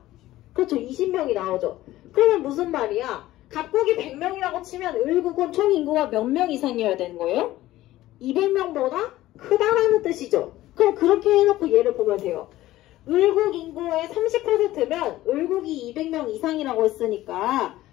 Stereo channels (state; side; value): quieter; right; 15.7 dB